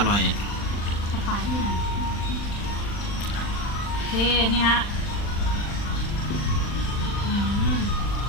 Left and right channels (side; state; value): right; late; 40 ms